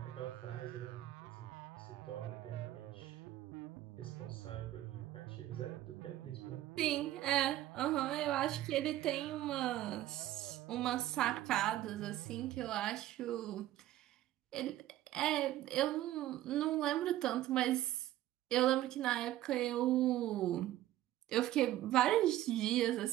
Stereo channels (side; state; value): left; quieter; 14.3 dB